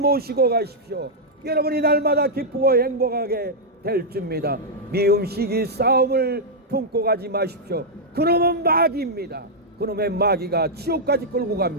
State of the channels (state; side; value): normal; both; correlation -0.06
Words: 가십시오. 여러분이 날마다 기쁘고 행복하게 될 줄입니다. 미움 시기 싸움을 품고 가지 마십시오. 그놈은 마귀입니다. 그놈의 마귀가 지옥까지 끌고